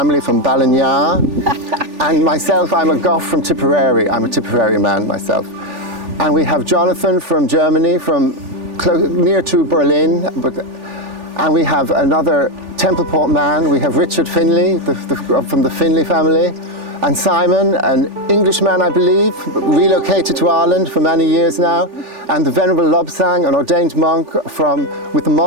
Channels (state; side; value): late; left; 3.4 ms